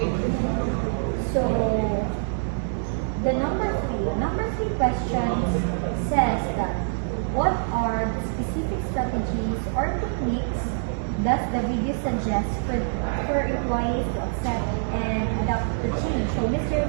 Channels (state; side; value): silent; left; 62 dB below the other